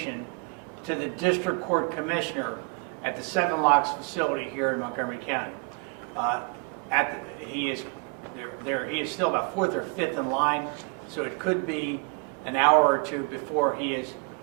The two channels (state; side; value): quieter; left; 33.5 dB